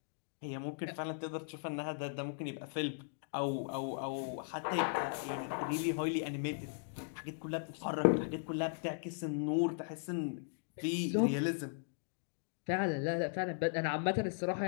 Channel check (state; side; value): silent; right; digital silence